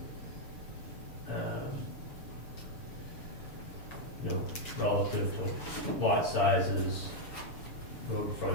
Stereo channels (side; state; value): right; late; 7.0 ms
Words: you know, relative to lot sizes, road